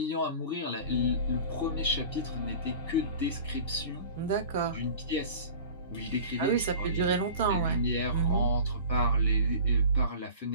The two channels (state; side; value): inverted; both; correlation -0.40